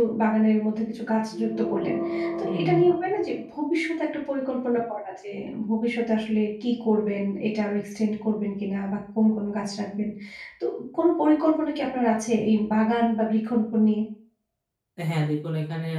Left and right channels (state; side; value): identical; both; correlation 1.00